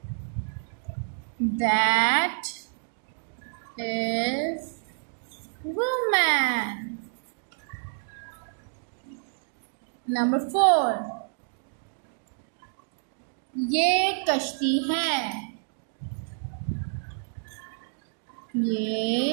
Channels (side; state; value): left; silent; digital silence